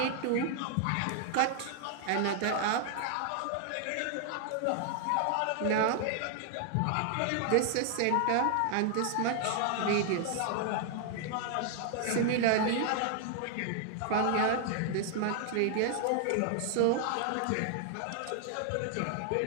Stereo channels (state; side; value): different; both; correlation 0.00